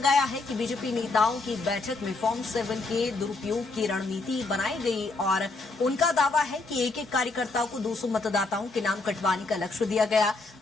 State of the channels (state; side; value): quieter; right; 3.4 dB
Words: है कि बीजेपी नेताओं की बैठक में फॉर्म 7 के दुरुपयोग की रणनीति बनाई गई और उनका दावा है कि एक एक कार्यकर्ताओं को 200 मतदाताओं के नाम कटवाने का लक्ष्य दिया गया।